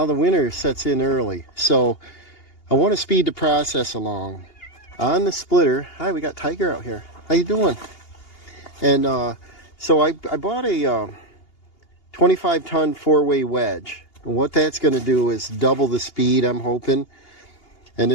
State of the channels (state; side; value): late; right; 2.8 ms